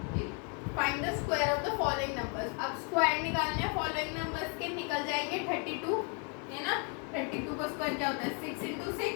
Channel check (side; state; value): right; quieter; 37.8 dB